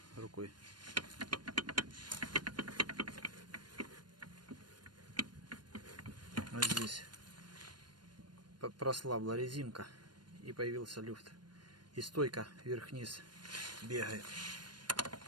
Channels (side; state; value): left; late; 0.71 ms